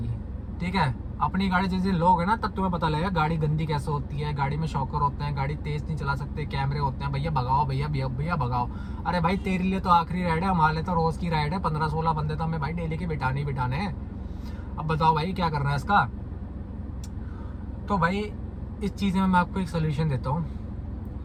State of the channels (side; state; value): both; identical; correlation 1.00